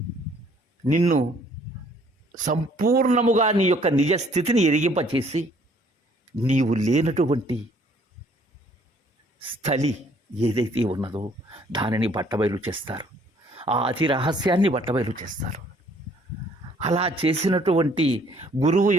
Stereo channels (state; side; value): normal; both; correlation 0.61